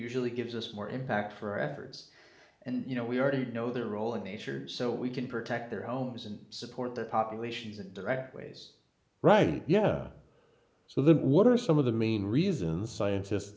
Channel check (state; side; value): identical; both; correlation 1.00